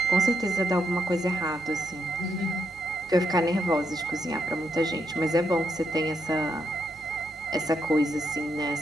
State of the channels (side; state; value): both; normal; correlation 0.79